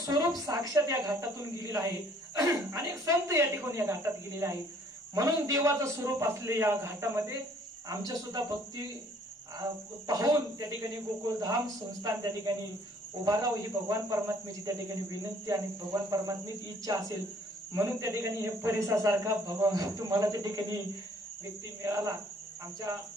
साक्षात या घाटातून गेलेलं आहे. अनेक संत या ठिकाणी या घाटात गेलेले आहे. म्हणून देवाचं स्वरूप असलेल्या या घाटामध्ये आमच्या सुद्धा भक्ती पाहून त्या ठिकाणी गोकुळधाम संस्थान त्या ठिकाणी उभा राहू ही भगवान परमात्म्याची त्या ठिकाणी विनंती आणि भगवान परमात्म्याची इच्छा असेल म्हणून त्या ठिकाणी हे परिसासारखा भगवान तुम्हाला त्या ठिकाणी व्यक्ती मिळाला. आमच्या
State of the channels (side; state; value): both; normal; correlation 0.59